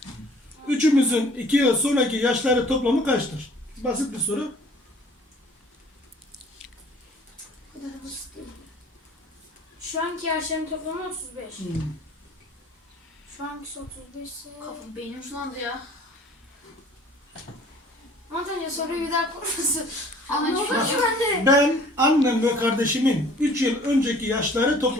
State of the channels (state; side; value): normal; both; correlation 0.53